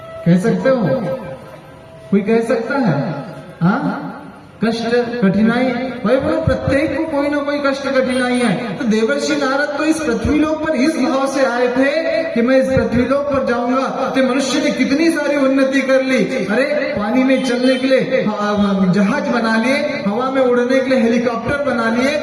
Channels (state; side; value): identical; both; correlation 1.00